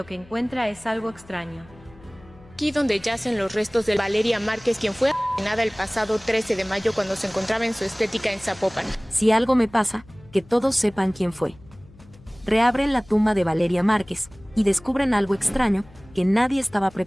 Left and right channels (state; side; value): noise; left; hum, 24 dB below the sound